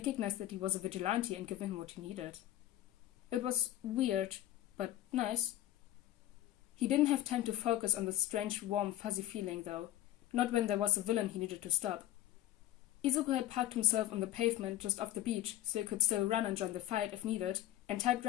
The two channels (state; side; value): quieter; right; 13.4 dB